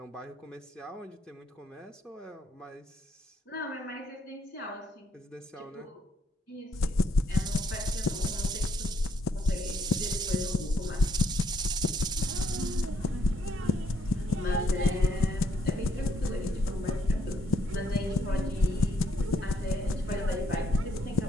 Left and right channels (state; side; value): normal; both; correlation 0.70